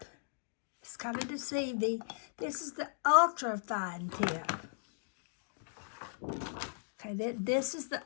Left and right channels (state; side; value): silent; right; digital silence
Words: It's kind of deceiving. This is the ultra fine tip. Okay, this is the